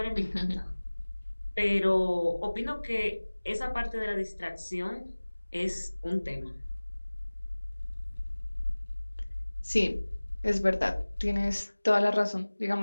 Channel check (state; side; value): inverted; both; correlation -1.00